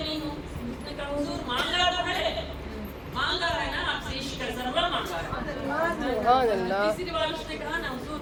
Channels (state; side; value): identical; both; correlation 1.00